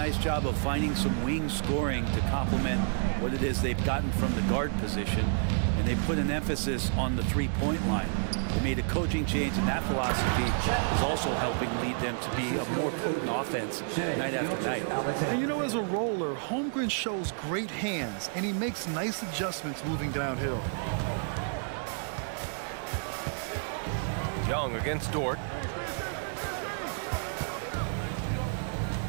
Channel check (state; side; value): silent; left; digital silence